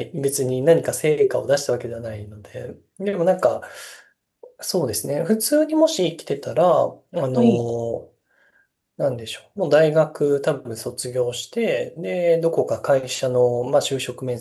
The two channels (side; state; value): both; identical; correlation 1.00